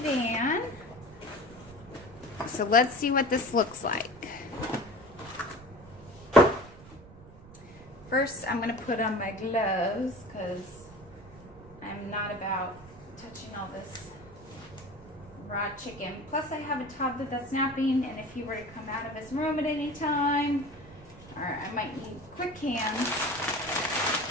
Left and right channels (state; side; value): noise; right; rumble, 19 dB below the sound